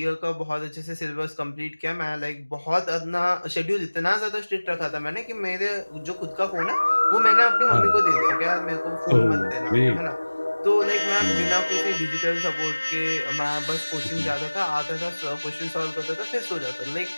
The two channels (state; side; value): inverted; both; correlation -1.00